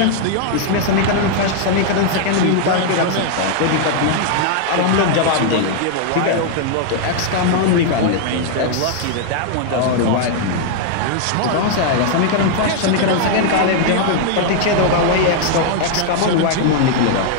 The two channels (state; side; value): different; both; correlation 0.00